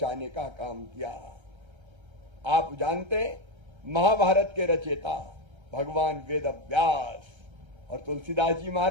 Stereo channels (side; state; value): left; late; 1.3 ms